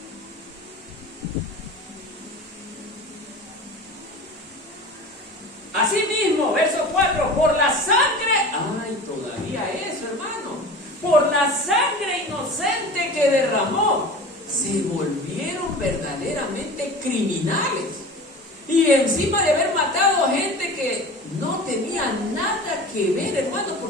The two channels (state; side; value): normal; both; correlation 0.36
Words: Asimismo, verso 4, por la sangre, todavía eso, hermano, por la sangre inocente que derramó, se volvieron verdaderamente criminales. Y encima de haber matado gente que no tenía nada que ver, hermano,